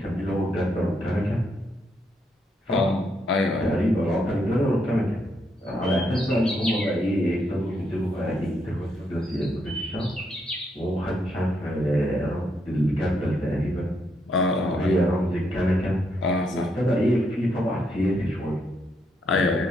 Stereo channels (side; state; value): both; normal; correlation 0.77